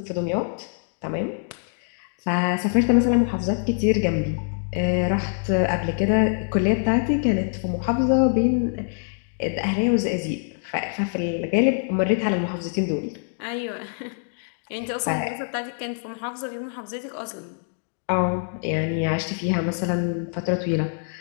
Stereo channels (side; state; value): right; silent; 62 dB below the other